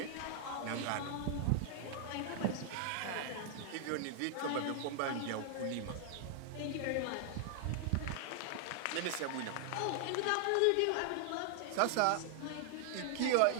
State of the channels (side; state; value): both; different; correlation 0.00